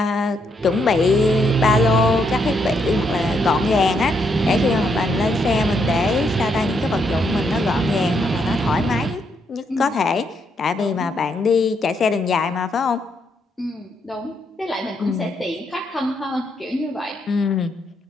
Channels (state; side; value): normal; both; correlation 0.76